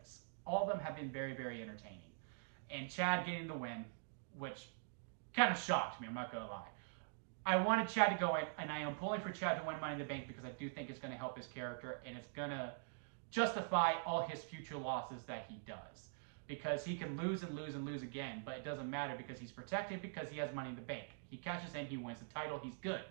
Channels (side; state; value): left; silent; digital silence